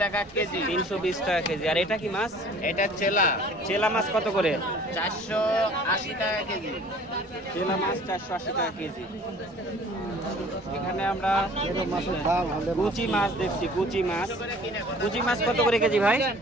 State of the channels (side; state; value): both; normal; correlation 0.50